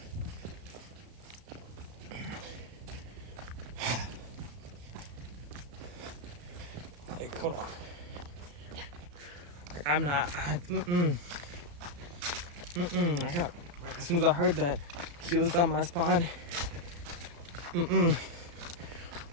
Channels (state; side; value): late; left; 34 ms